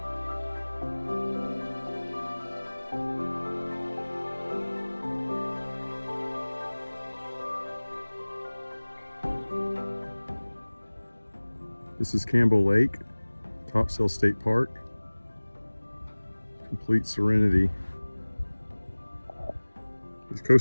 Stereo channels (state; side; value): inverted; both; correlation -1.00